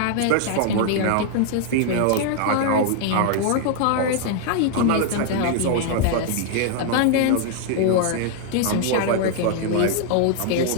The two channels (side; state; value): both; different; correlation 0.00